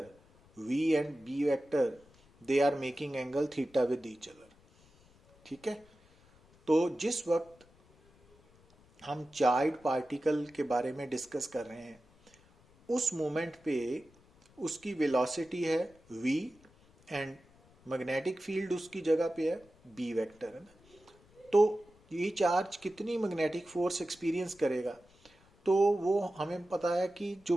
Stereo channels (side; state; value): left; noise; rumble, 29 dB below the sound